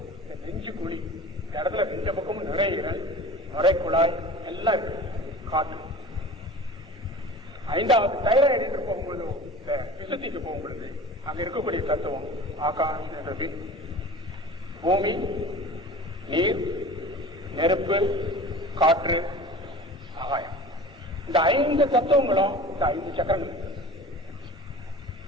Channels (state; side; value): normal; both; correlation 0.39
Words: இந்த நெஞ்சு குழி. இந்த இடத்துல 2 பக்கமும் நுரையீரல், நுரைக்குழாய் எல்லாம் இருக்கு, காற்று. 5வது தைராய்டு என்று போகும்பொழுது, இந்த விசுத்திக்கு போகும்பொழுது அங்க இருக்கக்கூடிய தத்துவம் ஆகாஷ் என்றது பூமி, நீர், நெருப்பு, காற்று, ஆகாயம். இந்த 5 தத்துவங்களும் இந்த 5 சக்கரங்கள்.